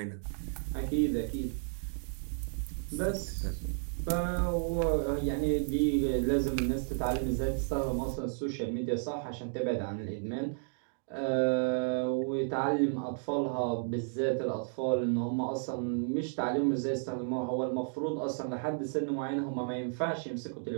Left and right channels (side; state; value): left; silent; digital silence